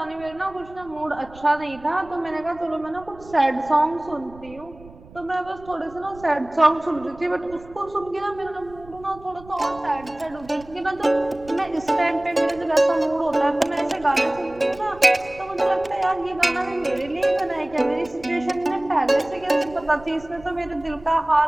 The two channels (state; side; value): noise; right; rumble, 21 dB below the sound